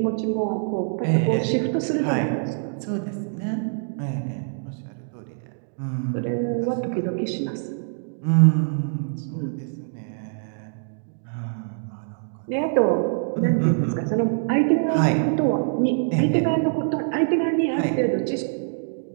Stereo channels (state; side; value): silent; left; digital silence